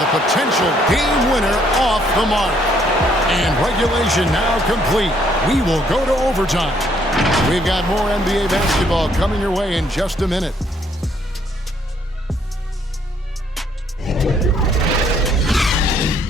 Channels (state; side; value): normal; both; correlation 0.67